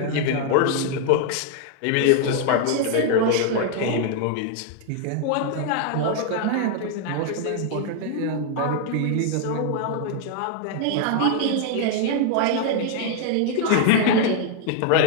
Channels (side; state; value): both; different; correlation 0.00